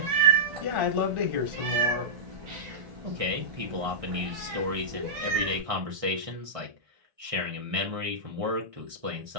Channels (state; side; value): late; left; 1.6 ms